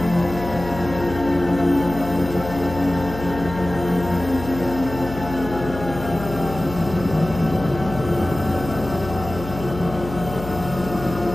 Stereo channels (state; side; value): noise; left; hum, 10 dB below the sound